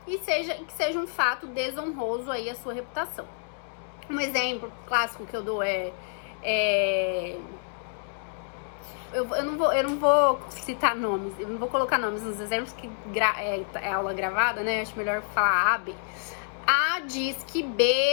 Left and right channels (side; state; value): right; silent; digital silence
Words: E que seja um fato desonroso aí à sua reputação. Um exemplo clássico que eu dou eu não vou citar nomes, eu não vou colocar nomes nos exemplos, que é aula gravada, né? Acho melhor falar A, B. A diz que